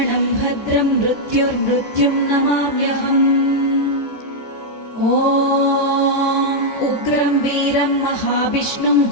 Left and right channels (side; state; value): right; late; 14 ms